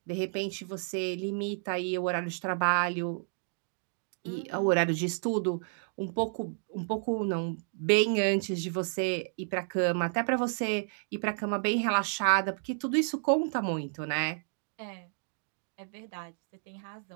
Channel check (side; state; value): left; silent; digital silence